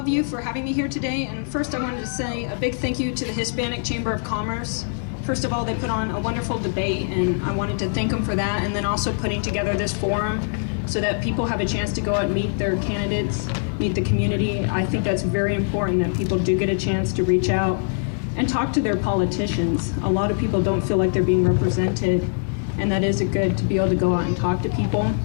you for having me here today. And first, I wanted to say a big thank you to the Hispanic Chamber of Commerce. First of all, they put on a wonderful debate, and I wanted to thank them for that. And then also putting together this forum so that people have a chance to go out and meet their candidates, meet the community. I think that's very important that people do get a chance to reach out and talk to their politicians. A lot of people don't feel like they're being represented, and that is good to be able to go out and talk to people.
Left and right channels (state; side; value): silent; right; 63 dB below the other